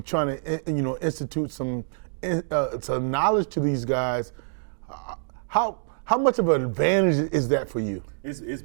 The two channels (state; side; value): silent; left; digital silence